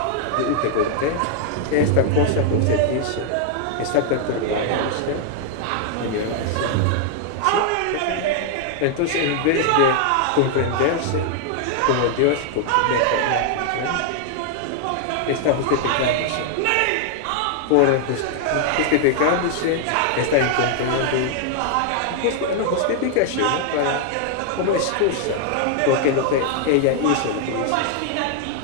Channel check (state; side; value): different; both; correlation 0.00